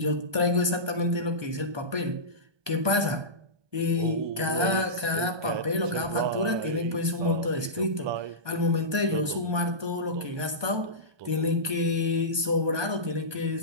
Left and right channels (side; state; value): left; late; 1.2 ms